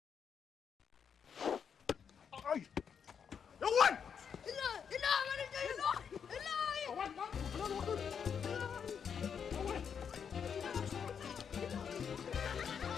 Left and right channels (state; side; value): quieter; right; 7.1 dB